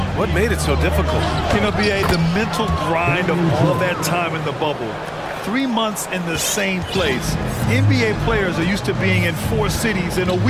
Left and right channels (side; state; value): both; identical; correlation 1.00